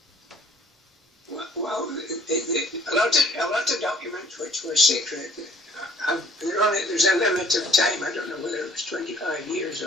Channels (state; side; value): normal; both; correlation 0.57